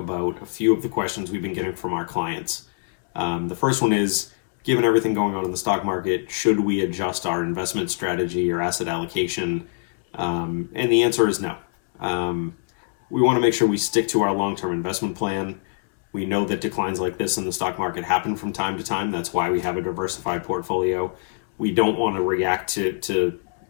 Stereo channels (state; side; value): silent; right; 63 dB below the other